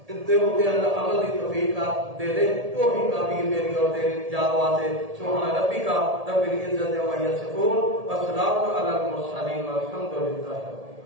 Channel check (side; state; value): left; late; 1.8 ms